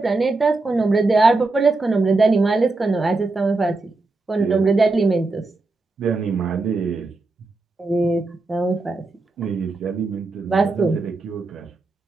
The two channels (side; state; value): left; quieter; 3.4 dB